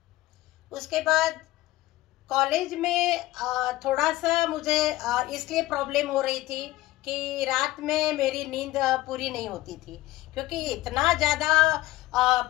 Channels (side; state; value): right; quieter; 17.3 dB